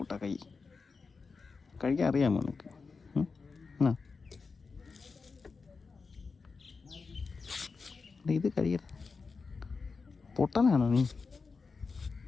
കഴിക്കാൻ അറിയാമോ നിനക്ക്? ആ ഇത് കഴിയട. പൊട്ടനാണോ നീ?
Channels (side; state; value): right; quieter; 4.7 dB